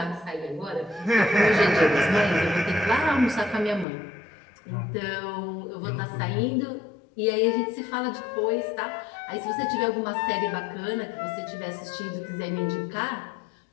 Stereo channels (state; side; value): drops out; right; at 3.9 s